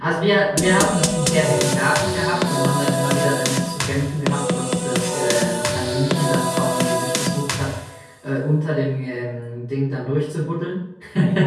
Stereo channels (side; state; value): both; identical; correlation 1.00